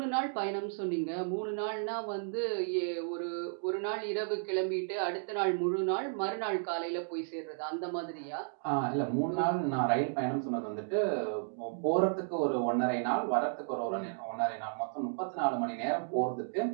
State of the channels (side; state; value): left; silent; digital silence